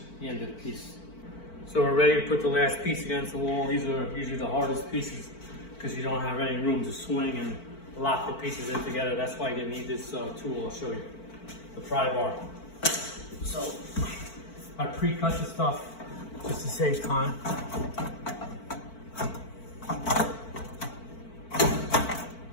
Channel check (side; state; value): right; late; 4.5 ms